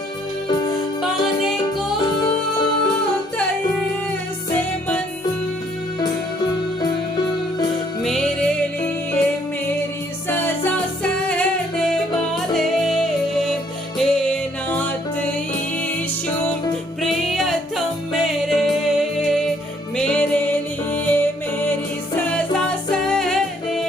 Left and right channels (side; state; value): both; normal; correlation 0.66